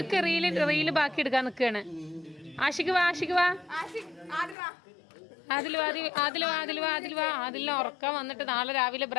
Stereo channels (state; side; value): drops out; right; at 4.5 s